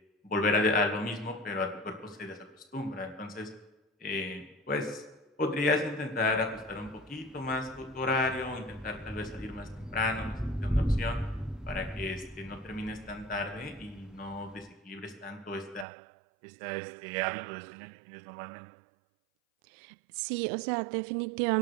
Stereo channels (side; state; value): left; drops out; at 15.9 s